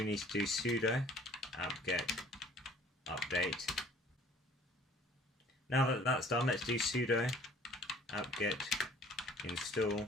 need to do sudo apt-get update. Now that that's done, let's do sudo apt-get install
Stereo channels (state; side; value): normal; both; correlation 0.53